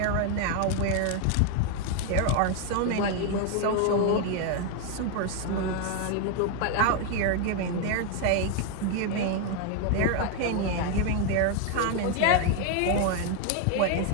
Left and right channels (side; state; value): both; different; correlation 0.01